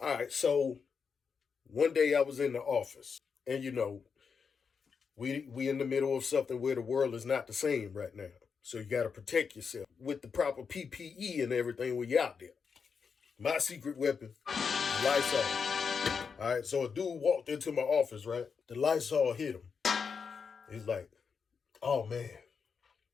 right. So one day I was in the office and, you know, we in the middle of something where the world is not the same right now. So you got to protect yourself with the proper PPE and everything when you're out there. My secret weapon, Lysol. All right. So a dude walked into my office, right? The Lysol hit him. He's like, oh, man,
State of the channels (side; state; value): right; quieter; 5.9 dB